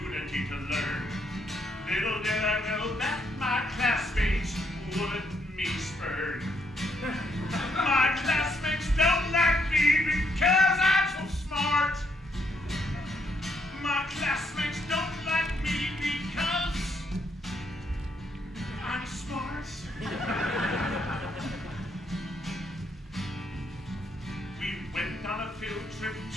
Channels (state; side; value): normal; both; correlation 0.74